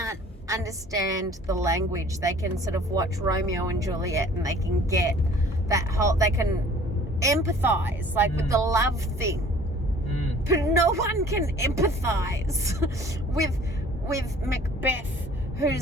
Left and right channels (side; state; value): both; normal; correlation 0.51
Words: understand the language, they can sort of watch Romeo and Juliet and they can get that whole... They can empathize, like, with the love thing. But no one can empathize with Macbeth,